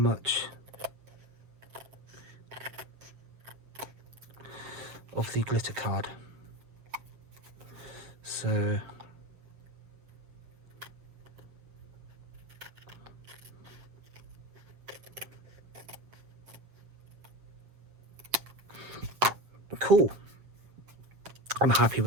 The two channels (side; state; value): left; late; 7.8 ms